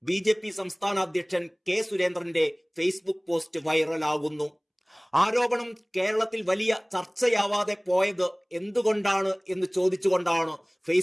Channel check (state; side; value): identical; both; correlation 1.00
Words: ബി.ജെ.പി. സംസ്ഥാന അധ്യക്ഷൻ കെ സുരേന്ദ്രന്റെ ഫേസ്ബുക്ക് പോസ്റ്റ് വൈറലാകുന്നു. ആരോപണം കേരളത്തിൽ വലിയ ചർച്ചയാവാതെ പോയത് എന്തുകൊണ്ടാണ് എന്ന് ചോദിച്ചുകൊണ്ടാണ്